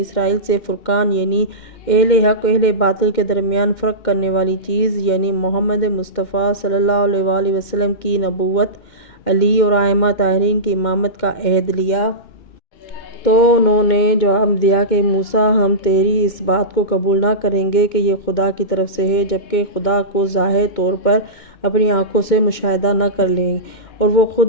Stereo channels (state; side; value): late; right; 2.2 ms